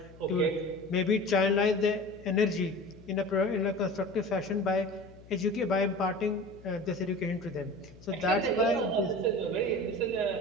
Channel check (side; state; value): left; noise; hum, 21 dB below the sound